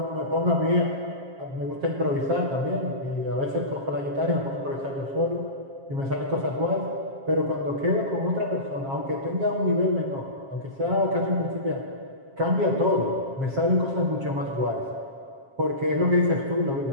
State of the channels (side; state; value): left; late; 7.4 ms